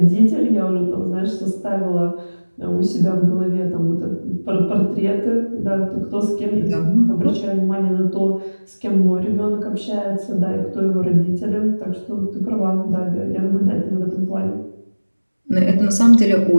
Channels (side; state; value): both; inverted; correlation -1.00